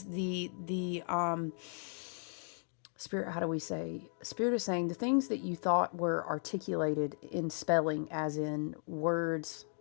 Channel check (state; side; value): silent; right; 54 dB below the other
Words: the spirit, how do we say? Spirit is saying the things that you thought were articulated in spelling, as in words